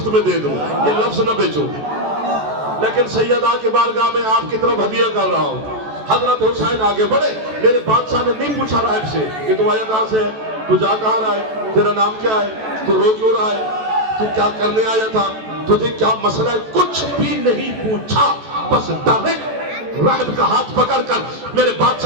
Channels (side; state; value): left; late; 14 ms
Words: میں دے دوں، یہ لفظ نہ بیچوں. لیکن سیدہ کی بارگاہ میں آپ کی طرف ہدیہ کر رہا ہوں. حضرت حسین آگے بڑھے. میرے بادشاہ نے نہیں پوچھا راہب سے کہ تو آیا کہاں سے ہے، تو جا کہاں رہا ہے، تیرا نام کیا ہے، تو رو کیوں رہا ہے، تو کیا کرنے آیا تھا، تجھے کیا مسئلہ ہے، کچھ بھی نہیں پوچھا. بس ڈائریکٹ راہب کا ہاتھ پکڑ کر میرے